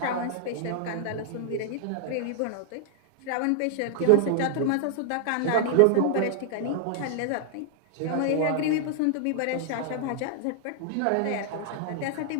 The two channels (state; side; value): different; both; correlation -0.01